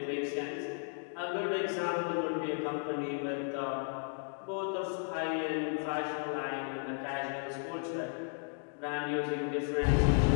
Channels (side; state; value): right; silent; 55 dB below the other